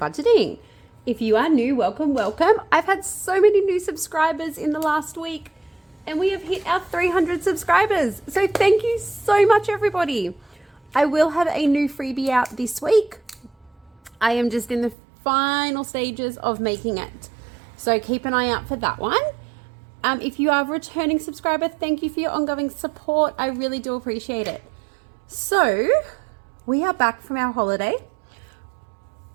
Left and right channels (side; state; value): left; drops out; at 15.0 s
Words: If you are new, welcome. I've had so many new subscribers in the last week and we have hit our 300 subscribers. So thank you so much everybody. I will have a new freebie out this week. I am just in the final stages of making it. So keep an eye out for that one. If you are a returning subscriber, thank you for your ongoing support. I really do appreciate it. So we are back from our holiday.